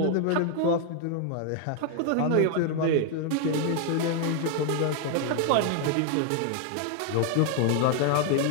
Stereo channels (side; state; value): both; different; correlation 0.00